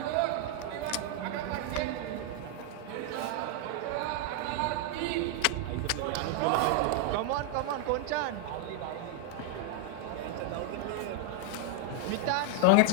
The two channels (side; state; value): both; different; correlation 0.00